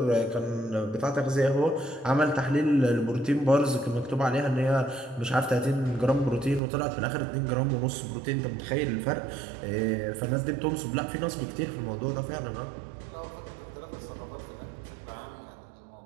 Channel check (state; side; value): drops out; left; at 6.6 s